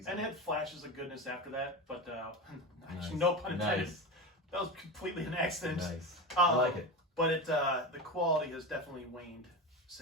And it had flashes of goodness after that, but Nice. no pun intended. Nice. That was completely an accident. Nice. I like it. But the quality has definitely waned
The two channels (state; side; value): normal; both; correlation 0.22